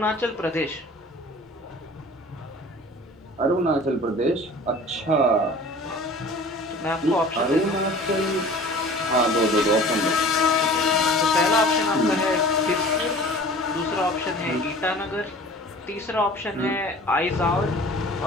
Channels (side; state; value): both; normal; correlation 0.44